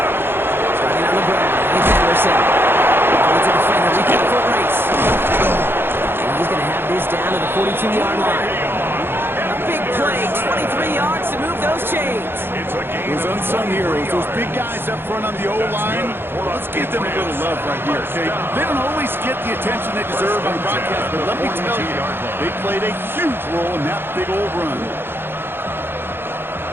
Starting on the ground, it's Anderson. It's a defender, we get a foot race. And he's going to have this down to the 42-yard line. A big play, 23 yards to move those chains. Those unsung heroes, those big guys up front on the O-line, let's give them a little love right here, okay? They don't always get the attention they deserve on broadcast, but let me tell you, they played a huge role in that big old run.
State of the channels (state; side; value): late; left; 0.10 ms